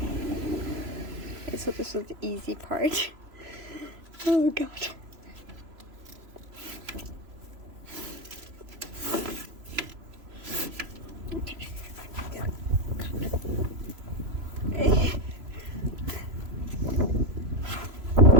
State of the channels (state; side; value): late; left; 3.0 ms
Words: so this was the easy part. Oh god. Okay. Okay.